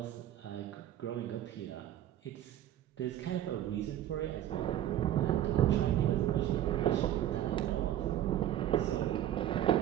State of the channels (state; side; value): quieter; left; 12.0 dB